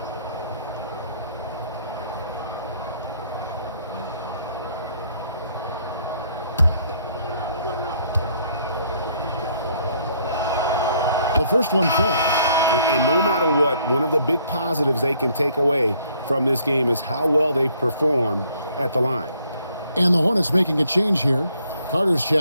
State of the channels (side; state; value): both; inverted; correlation -0.65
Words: The first one falls. And no matter what, one of the big positives they can take away from this game is how well they performed at the line. And the Hornets making a change here. Carter's